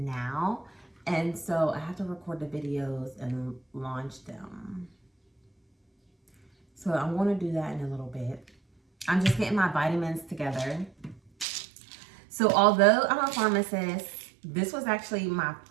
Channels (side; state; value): left; drops out; at 11.5 s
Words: And so I have to record the videos and launch them. So I'm going to do that in a little bit. I'm just getting my vitamins together. So although I'm a pharmacist, this was actually my